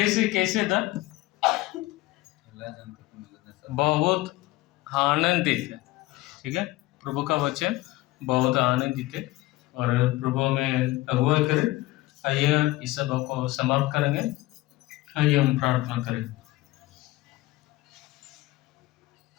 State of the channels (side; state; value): right; quieter; 18.7 dB